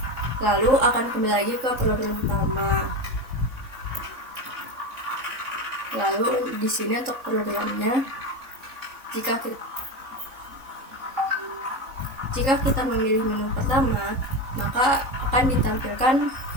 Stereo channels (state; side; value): late; left; 3.8 ms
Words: Lalu akan kembali lagi ke program utama. Lalu di sini untuk programnya, jika kita memilih menu pertama, maka akan ditampilkan